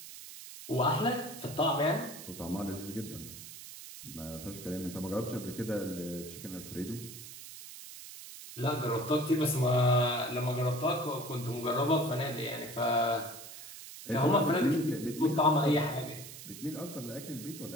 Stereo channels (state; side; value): noise; right; hiss, 13 dB below the sound